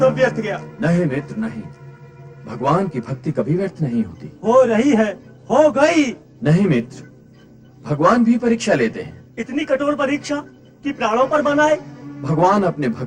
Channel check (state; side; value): identical; both; correlation 1.00